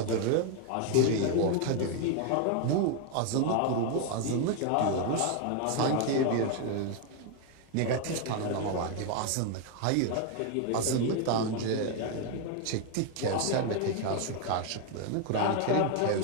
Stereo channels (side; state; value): both; different; correlation 0.01